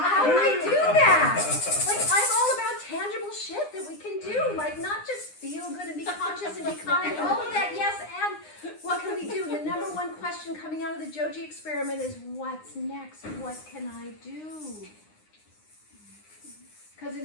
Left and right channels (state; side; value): late; right; 9.8 ms